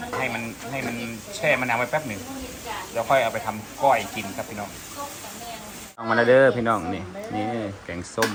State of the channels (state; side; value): identical; both; correlation 1.00